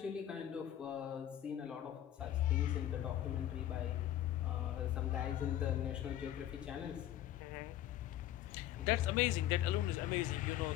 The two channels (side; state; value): right; quieter; 12.3 dB